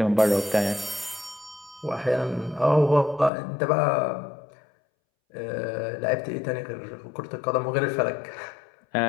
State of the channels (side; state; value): right; drops out; at 3.3 s